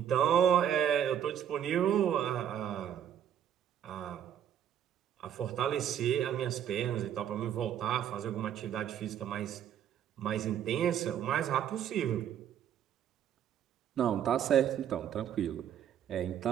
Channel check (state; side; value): quieter; left; 9.7 dB